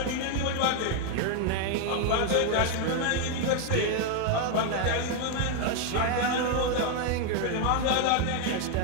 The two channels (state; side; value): different; both; correlation 0.01